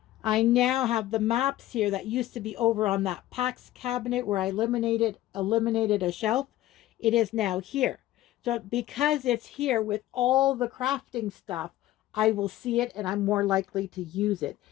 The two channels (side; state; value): right; quieter; 14.9 dB